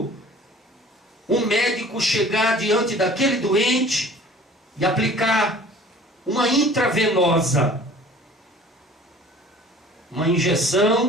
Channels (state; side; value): normal; both; correlation 0.48